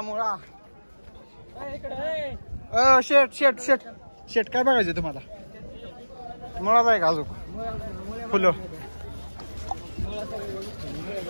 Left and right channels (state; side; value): inverted; both; correlation -1.00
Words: मुळा शेट शेट शेट शेट काय बघायचं तुम्हाला मुळाच आहे का अजून फुलं